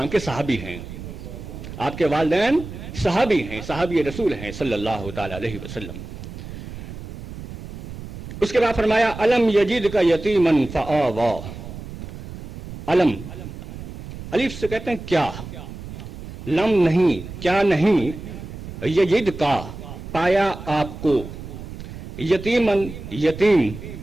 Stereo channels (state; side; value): noise; right; rumble, 11 dB below the sound